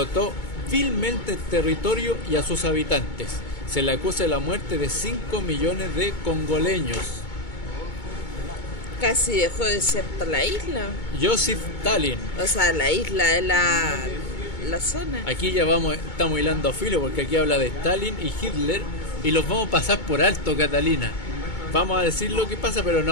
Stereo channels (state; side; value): late; right; 2.2 ms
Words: vilmente el territorio y a sus habitantes. Se le acusa de la muerte de 5 millones de congoleños. casi dejó desierta la isla. Joseph Stalin. O sea, la isla de la zona. Aquí ya estamos hilando filo porque aquí habla de Stalin y Hitler y los vamos a pasar por alto, Catalina. Vamos a decir lo que pasa, pero no